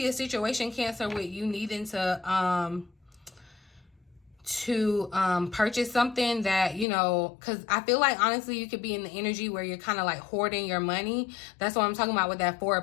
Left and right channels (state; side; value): drops out; right; at 6.9 s